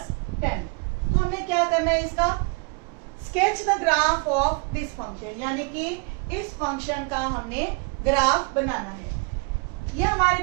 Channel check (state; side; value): quieter; left; 33.2 dB